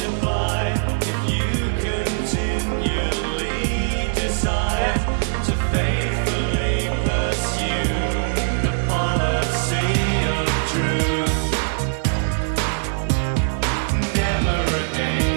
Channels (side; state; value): left; silent; digital silence